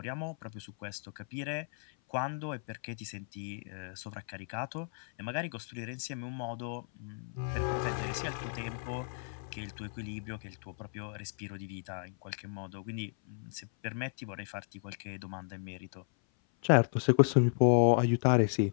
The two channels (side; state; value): right; silent; 55 dB below the other